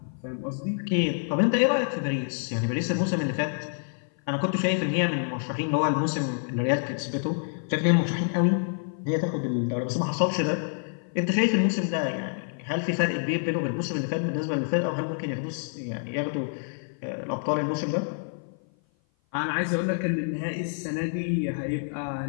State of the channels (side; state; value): right; silent; 55 dB below the other